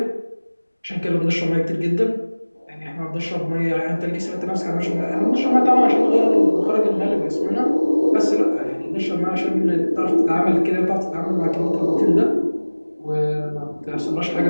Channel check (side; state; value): both; inverted; correlation -1.00